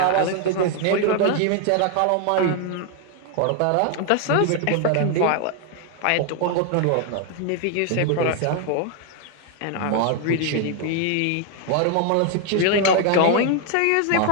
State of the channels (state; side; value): different; both; correlation 0.00